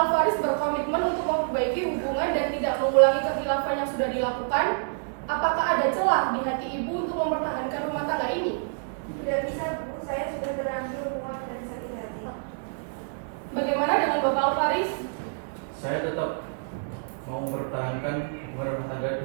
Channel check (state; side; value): silent; left; digital silence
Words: berkomitmen untuk memperbaiki hubungan dan tidak mengulangi kekhilafan yang sudah dilakukan, apakah ada celah di hati Ibu untuk mempertahankan rumah tangga ini? Tidak bisa, Bu. Saya sudah terlanjur muak dan sakit hati. Bagaimana dengan Bapak Alvaris? Saya tetap mau mempertahankan hubungan rumah tangga